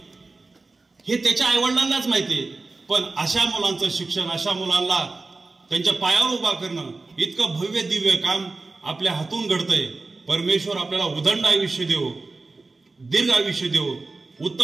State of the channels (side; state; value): left; quieter; 3.6 dB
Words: हे त्याच्या आई वडिलांनाच माहितीये, पण अशा मुलांचं शिक्षण, अशा मुलांना त्यांच्या पायावर उभा करणं इतकं भव्य दिव्य काम आपल्या हातून घडतंय। परमेश्वर आपल्याला उदंड आयुष्य देवो, दीर्घ आयुष्य देवो,